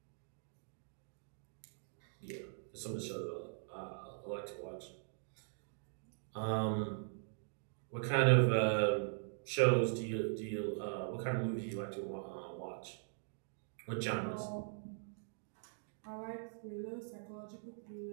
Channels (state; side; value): silent; left; digital silence